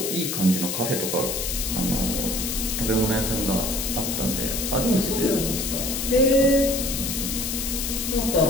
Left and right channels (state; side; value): noise; left; hiss, 2 dB below the sound